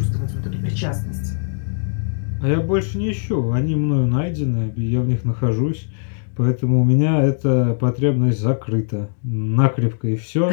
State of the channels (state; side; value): silent; right; digital silence